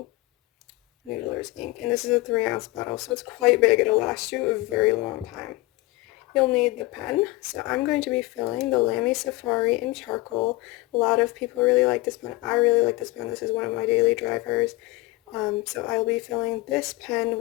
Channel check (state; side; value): quieter; right; 21.0 dB